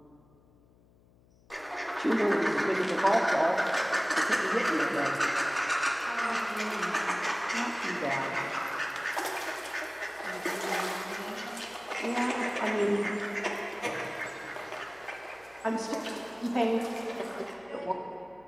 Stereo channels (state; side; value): noise; left; hum, 29 dB below the sound